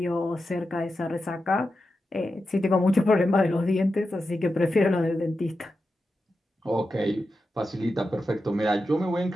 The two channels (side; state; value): both; normal; correlation 0.90